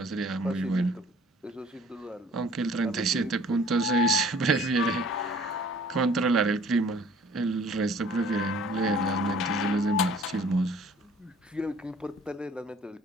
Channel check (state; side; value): normal; both; correlation 0.53